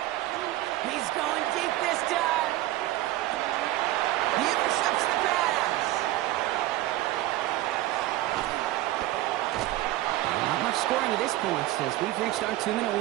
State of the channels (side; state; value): left; quieter; 16.0 dB